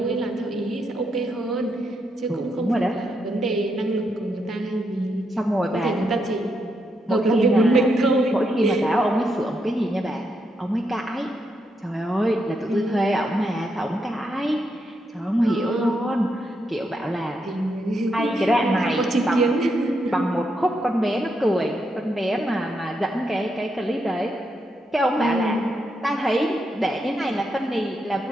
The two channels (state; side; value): normal; both; correlation 0.81